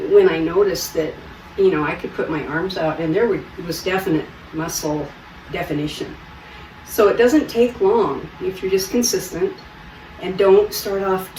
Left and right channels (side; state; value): both; identical; correlation 1.00